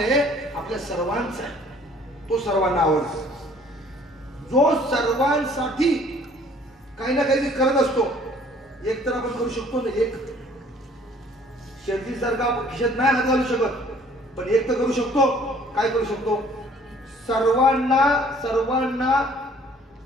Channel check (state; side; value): normal; both; correlation 0.56